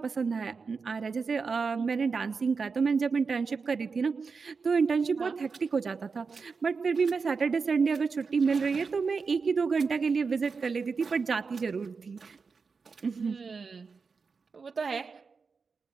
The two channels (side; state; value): left; quieter; 5.0 dB